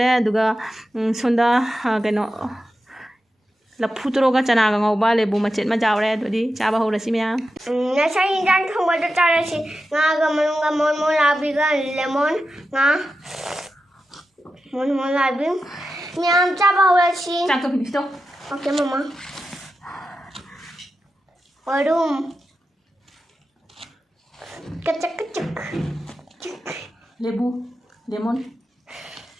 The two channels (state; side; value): normal; both; correlation 0.91